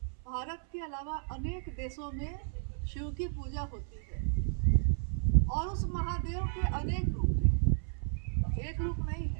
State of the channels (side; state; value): left; silent; 56 dB below the other